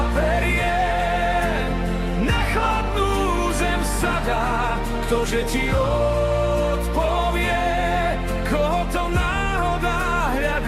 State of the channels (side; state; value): both; identical; correlation 1.00